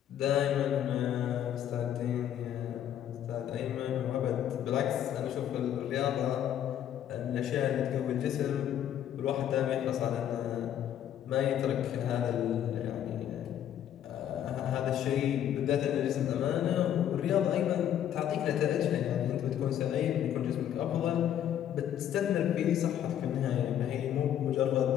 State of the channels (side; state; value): right; quieter; 10.5 dB